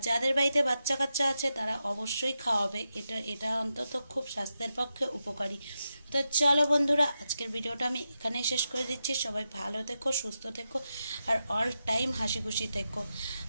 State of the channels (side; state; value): both; inverted; correlation -0.88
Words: যাদের বাড়িতে বাচ্চা কাচ্চা আছে তারা অবশ্যই খাওয়াবে, এটা অন্তত খুব স্বাস্থ্যের পক্ষে উপকারী। তো চলো বন্ধুরা, আজকের ভিডিওটা আমি এখানেই শেষ করে দিচ্ছি। সবাই ভালো থেকো, সুস্থ থেকো, আর অল টাইম হাসি খুশি থেকো।